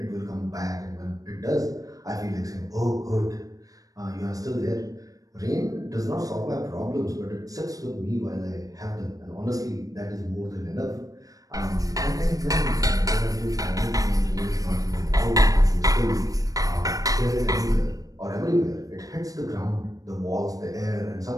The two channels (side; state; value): left; late; 0.17 ms